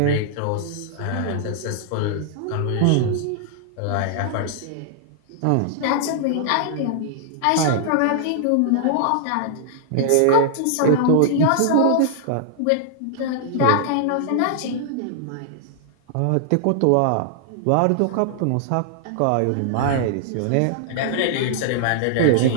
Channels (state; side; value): different; both; correlation -0.01